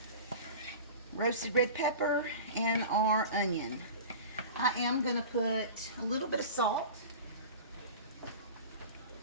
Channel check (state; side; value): inverted; both; correlation -0.34